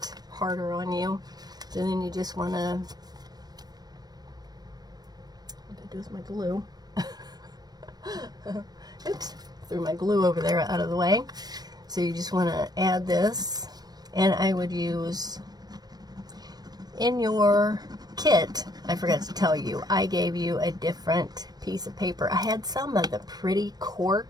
harder on you. So then you just want to, what I do with my glue. Oops, threw my glue over there out of the way. So you just want to add this, and I would use, in your kit, I forgot to tell you, I gave you a different piece of paper. I had some of the pretty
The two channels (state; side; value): late; left; 0.19 ms